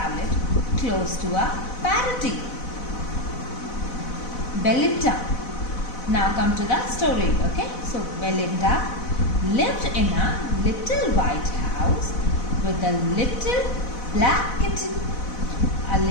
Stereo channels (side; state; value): right; late; 4.0 ms